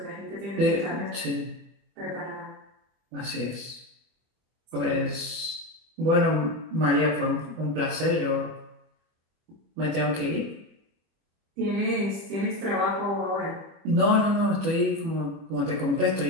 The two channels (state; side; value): late; left; 25 ms